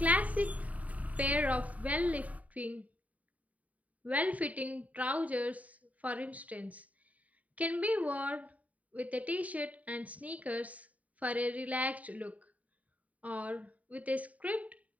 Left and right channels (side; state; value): left; late; 0.071 ms